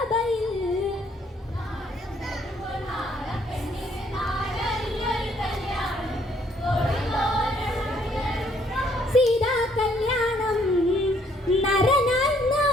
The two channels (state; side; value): normal; both; correlation 0.66